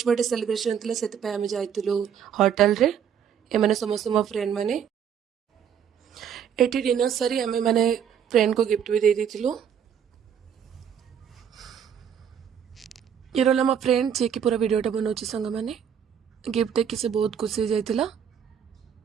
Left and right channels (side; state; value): left; quieter; 8.2 dB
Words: बर्थडे सेलिब्रेशन थिला सेते पे आमे जाइतलु होटल रे। ए माने समस्त मो फ्रेंड माने एटी डिनर सरी आमे माने फ्रेंड को गिफ्ट भी दे देथिलु। ये रहला मो फ्रेंड जे कि पूरा वीडियोटा बनौछि सांग माने गिफ्ट देखि से बहुत खुशी जाइतिला।